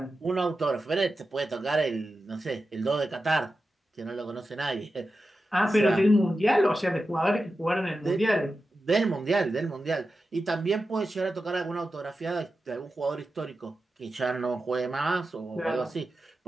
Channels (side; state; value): both; normal; correlation 0.92